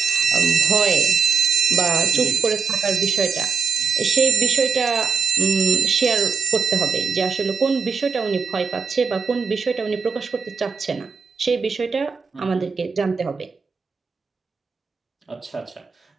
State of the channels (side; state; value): left; quieter; 5.5 dB